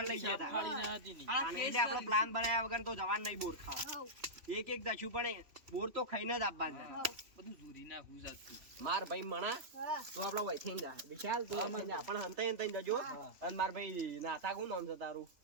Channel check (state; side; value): late; left; 3.0 ms